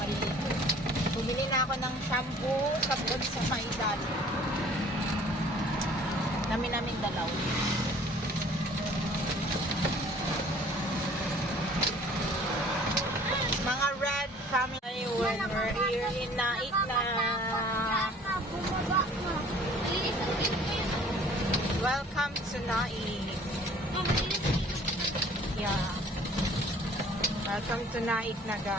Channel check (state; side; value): normal; both; correlation 0.52